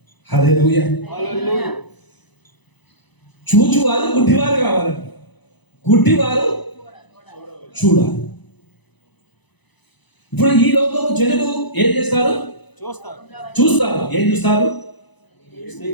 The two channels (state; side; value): late; right; 1.0 ms